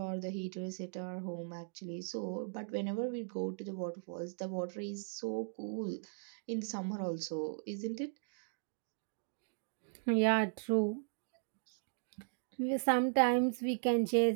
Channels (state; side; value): silent; left; digital silence